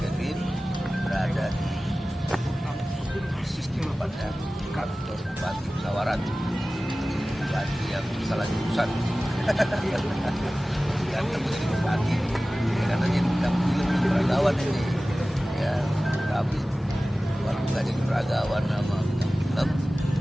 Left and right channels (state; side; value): normal; both; correlation 0.97